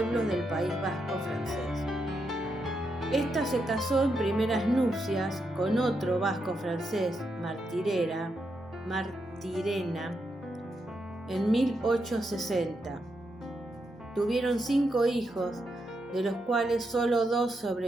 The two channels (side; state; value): both; normal; correlation 0.83